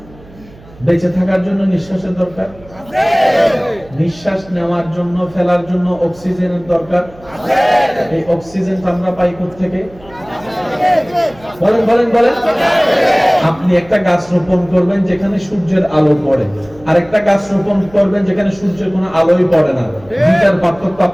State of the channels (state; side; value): noise; right; hum, 23 dB below the sound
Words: বেঁচে থাকার জন্য নিঃশ্বাসের দরকার, নিঃশ্বাস নেওয়ার জন্য ফেলার জন্য অক্সিজেনের দরকার। এই অক্সিজেন আমরা পাই কোথা থেকে? বলেন বলেন বলেন। আপনি একটা গাছ রোপণ করবেন যেখানে সূর্যের আলো পড়ে, আর একটা গাছ রোপণ করবেন যেখানে সূর্যের কোনো আলোই পড়ে না। দুইটার পার্থক্য